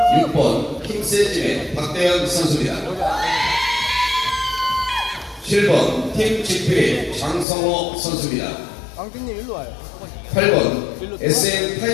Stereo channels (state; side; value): drops out; right; at 7.5 s